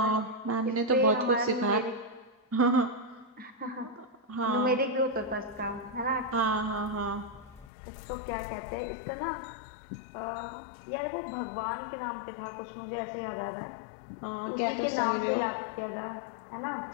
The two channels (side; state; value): right; drops out; at 7.7 s